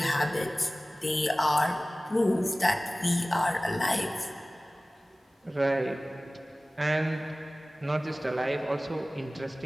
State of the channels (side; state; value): both; normal; correlation 0.98